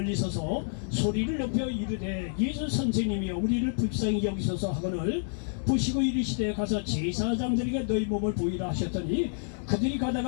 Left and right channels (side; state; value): right; silent; digital silence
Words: 서서 소리를 높여 이르되 예수 선생님이여 우리를 불쌍히 여기소서 하거늘 보시고 이르시되 가서 제사장들에게 너희 몸을 보이라 하셨더니 그들이